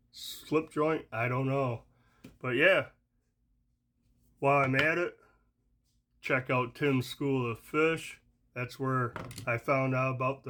slip joint? I don't know. But yeah, while I'm at it, check out Tim's School of Fish. That's where I found out about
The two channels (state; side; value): identical; both; correlation 1.00